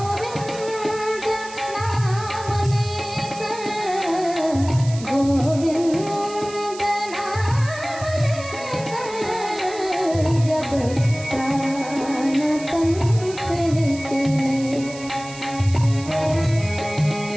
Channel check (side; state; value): right; noise; hiss, 15 dB below the sound